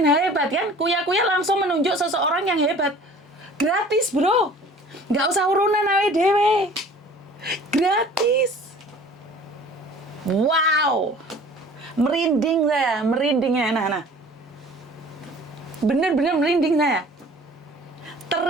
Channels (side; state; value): both; normal; correlation 0.48